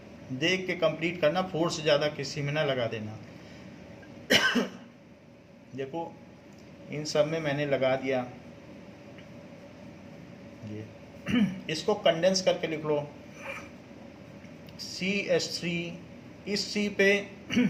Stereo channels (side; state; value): both; identical; correlation 1.00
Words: देख के कंप्लीट करना, 4 से ज़्यादा किसी में ना लगा देना। देखो इन सब में मैंने लगा दिया, ये इसको कंडेंस करके लिख लो। CH3, इस C पे